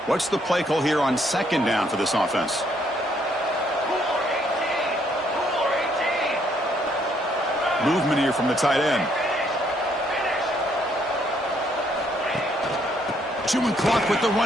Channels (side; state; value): both; normal; correlation 0.69